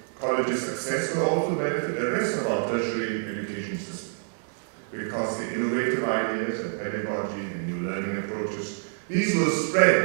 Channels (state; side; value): silent; left; digital silence